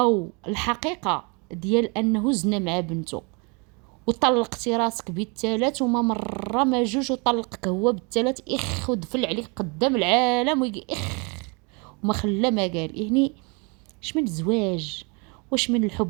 الحقيقه ديال انه زنا مع بنته، وطلقتي راسك بالثلاث، وما مره ما جوج، وطلقك هو بالثلاث، ودفل عليك قدام العالم ويجي وما خلى ما قال. يعني اش من الزواج، واش من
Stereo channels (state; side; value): quieter; left; 31.8 dB